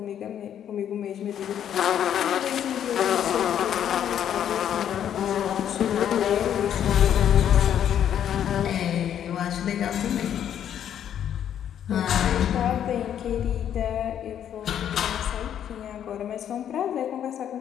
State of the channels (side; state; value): right; quieter; 9.7 dB